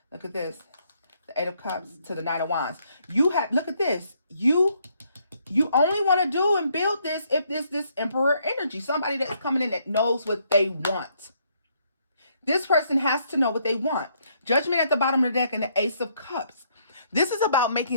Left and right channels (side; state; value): both; inverted; correlation -0.70